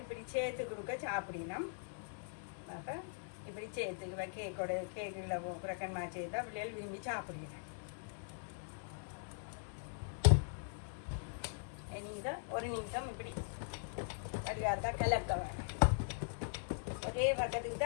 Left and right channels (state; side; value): silent; right; digital silence